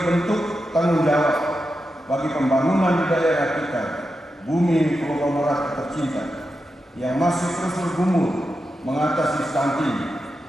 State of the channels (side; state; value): both; normal; correlation 0.89